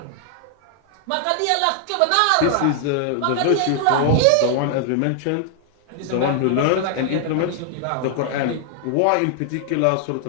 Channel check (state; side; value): different; both; correlation 0.00